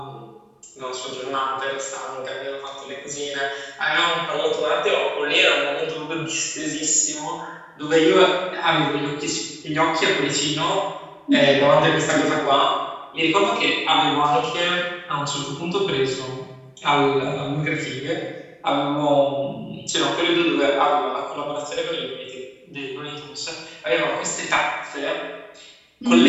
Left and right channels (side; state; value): both; identical; correlation 1.00